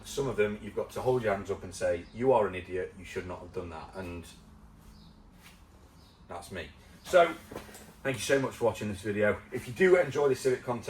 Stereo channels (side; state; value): both; identical; correlation 1.00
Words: some of them you've got to hold your hands up and say, you are an idiot, you should not have done that, and that's me. So thank you so much for watching this video. If you do enjoy this Civic